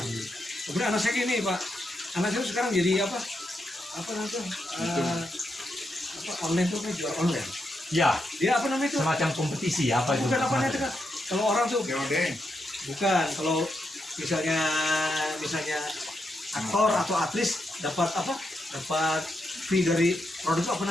Kemudian anak saya gini Pak, anak saya sekarang jadi apa namanya tuh? Apa online tuh kan jual online. Ya, Dia apa namanya itu? semacam kompetisi apa itu? Bukan apa namanya itu kan? Kalau orang tuh COD. bukan, kalau misalnya aktor atau aktris dapat apa? Dapat fee dari produk itu apa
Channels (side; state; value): both; normal; correlation 0.83